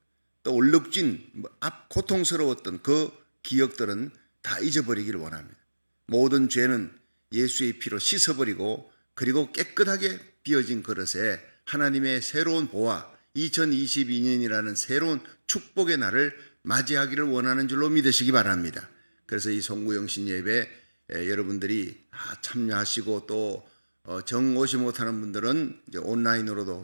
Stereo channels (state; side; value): inverted; both; correlation -1.00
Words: 또 얼룩진 고통스러웠던 그 기억들은 다 잊어버리기를 원합니다. 모든 죄는 예수의 피로 씻어버리고 그리고 깨끗하게 비어진 그릇에 하나님의 새로운 보화, 2022년이라는 새로운 축복의 날을 맞이하기를 원하는 줄로 믿으시기 바랍니다. 그래서 이 송구영신 예배 여러분들이 참여하시고 또 정 오지 못하는 분들은 이제